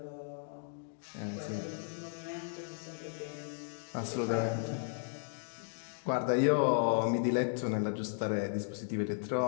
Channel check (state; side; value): silent; right; digital silence